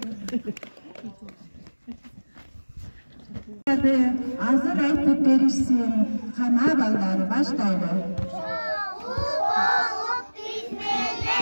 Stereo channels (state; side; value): inverted; both; correlation -1.00